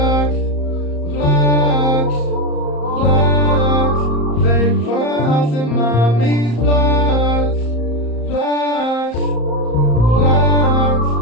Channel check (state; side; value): late; right; 34 ms